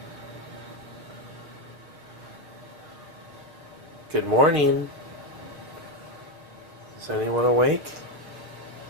Good morning. Is anyone awake?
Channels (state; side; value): late; left; 7.0 ms